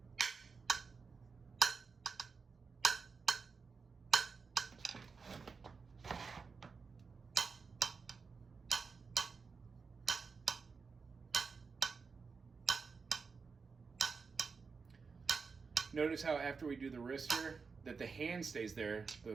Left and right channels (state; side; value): quieter; left; 5.0 dB